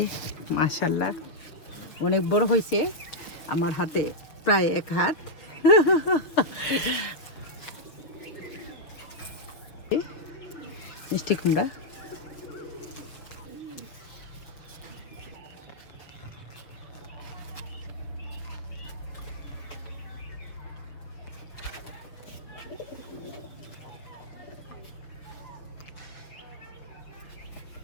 মাশাল্লাহ অনেক বড় হয়েছে, আমার হাতে প্রায় এক হাত। মিষ্টি কুমড়া,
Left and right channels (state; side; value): late; right; 6.6 ms